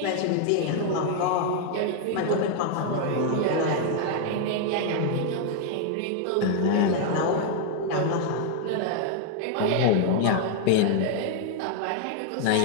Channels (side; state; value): both; different; correlation 0.00